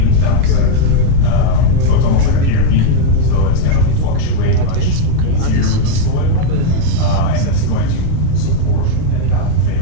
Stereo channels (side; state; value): both; different; correlation 0.00